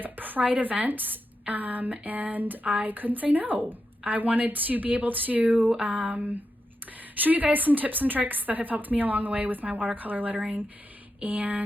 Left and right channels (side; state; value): both; normal; correlation 0.87